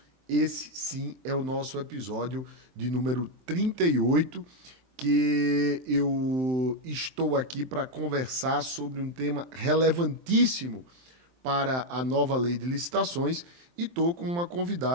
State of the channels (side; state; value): left; late; 23 ms